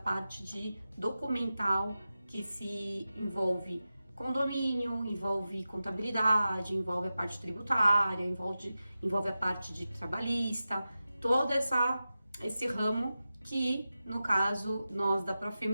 de documental, que se envolve condomínio, envolve contabilidade, envolve a parte tributária, envolve a parte de trabalhista, todo esse ramo que, no caso, nós da Profirma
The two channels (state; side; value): inverted; both; correlation -0.93